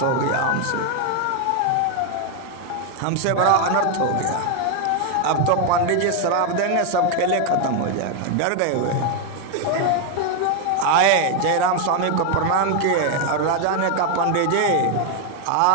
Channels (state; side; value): different; both; correlation 0.01